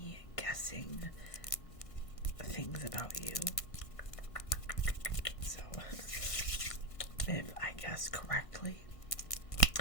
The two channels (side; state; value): right; late; 1.5 ms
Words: guessing things about you. So if I guess correctly,